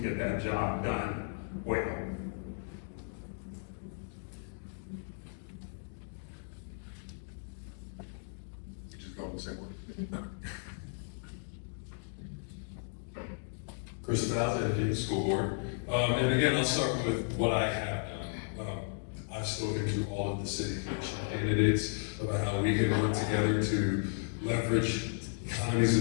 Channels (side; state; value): right; silent; digital silence